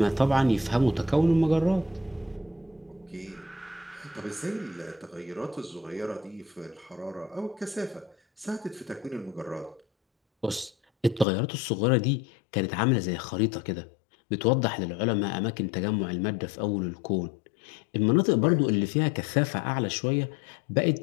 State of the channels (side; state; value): right; drops out; at 11.2 s